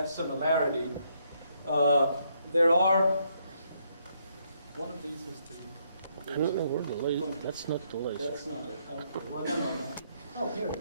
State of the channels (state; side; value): inverted; both; correlation -0.74